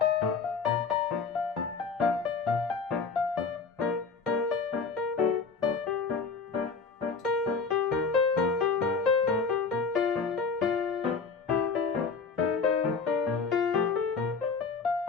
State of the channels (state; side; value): quieter; right; 5.1 dB